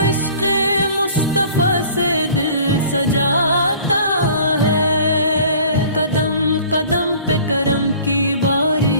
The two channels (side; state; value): both; inverted; correlation -0.49